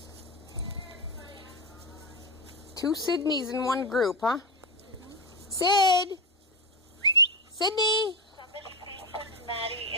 Two Sydneys in one group, huh? Sid! Sydney! Somebody please put Maddie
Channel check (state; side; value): normal; both; correlation 0.13